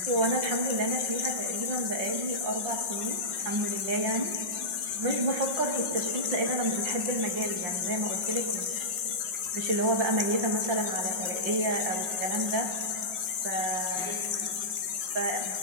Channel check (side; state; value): left; late; 5.4 ms